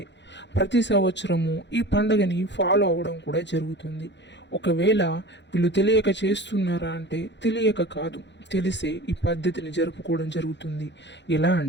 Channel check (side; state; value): right; late; 0.52 ms